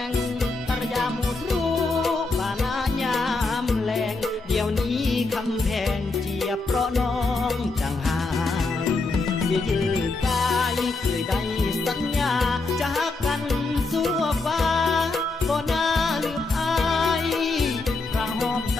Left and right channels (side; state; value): right; quieter; 3.5 dB